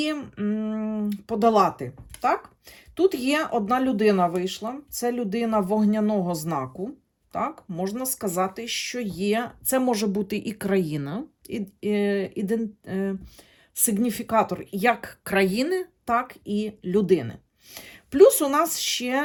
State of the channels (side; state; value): both; identical; correlation 1.00